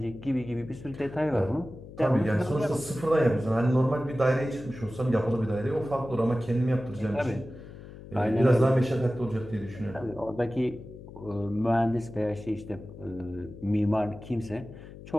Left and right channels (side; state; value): left; noise; hum, 15 dB below the sound